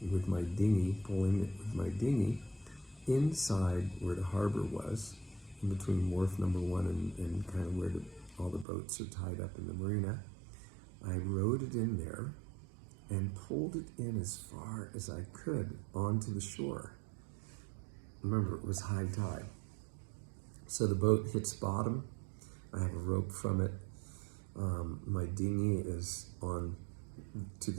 with my dinghy, pulling it with my dinghy, inside where the harbor was, in between wharf number 1 and kind of where all the boats are tied up in the marina. I rowed it in there and pulled it in as far as I could onto the shore. Remember, it was high tide. So the boat hits bottom. I have a rope from it. My dinghy is on to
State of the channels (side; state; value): left; drops out; at 8.7 s